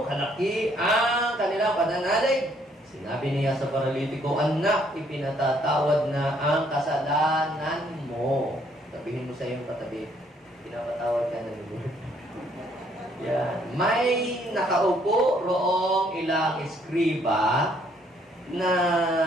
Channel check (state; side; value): normal; both; correlation 0.67